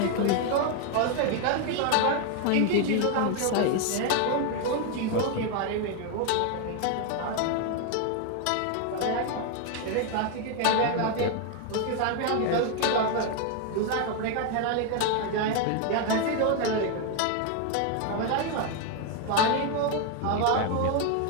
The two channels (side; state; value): both; different; correlation 0.01